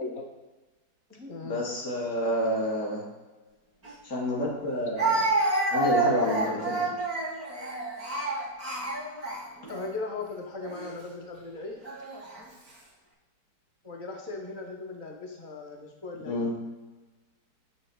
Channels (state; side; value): late; left; 4.4 ms